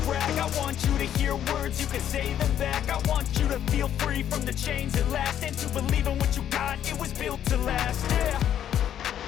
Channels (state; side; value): quieter; right; 10.3 dB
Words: brag. I want you to hear words, you can say them back. I want you to feel free from the chains at last, and to believe in what you got, it was built to last, yeah.